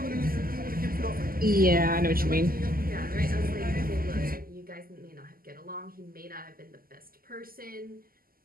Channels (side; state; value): left; late; 0.42 ms